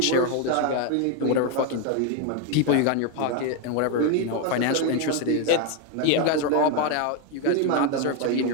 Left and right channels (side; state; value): both; different; correlation 0.01